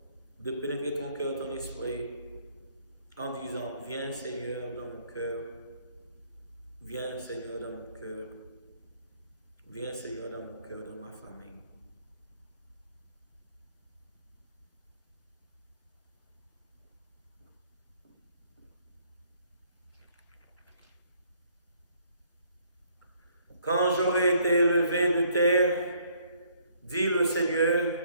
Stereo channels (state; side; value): inverted; both; correlation -0.65